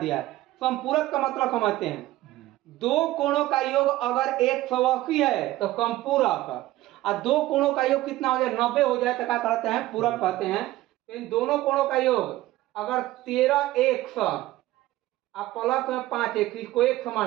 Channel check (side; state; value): left; quieter; 16.4 dB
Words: है। समपूरक का मतलब समझते हैं, दो कोणों का योग अगर 180 है तो समपूरक और दो कोणों का योग कितना हो जाए 90 हो जाए तो क्या कहते हैं पूरक कहते हैं। इन दोनों कोणों का योग अगर 13 100 आप प्लस में 5 1 इसको 1